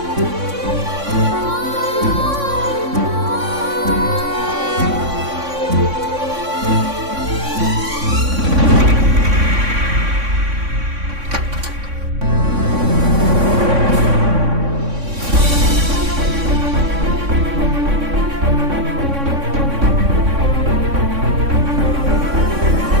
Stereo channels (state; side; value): late; left; 3.6 ms